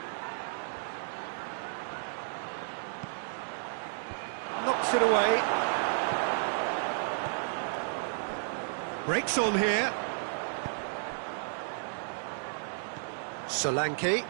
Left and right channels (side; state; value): left; silent; digital silence